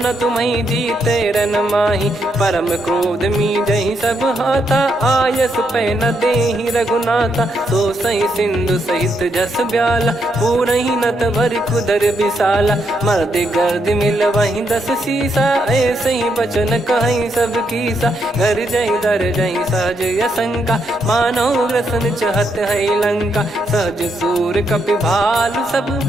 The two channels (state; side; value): normal; both; correlation 0.78